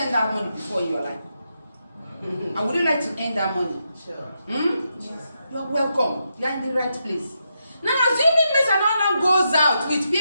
that money before in your life? And would you like to earn that money? Sure. Yes. You're welcome. You're in the right place. Now, assuming Mr. Nana goes out with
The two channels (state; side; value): inverted; both; correlation -0.83